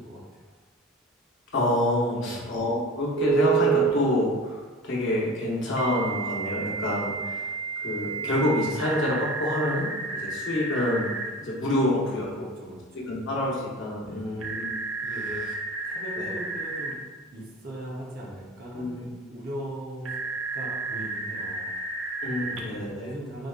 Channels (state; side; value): normal; both; correlation 0.36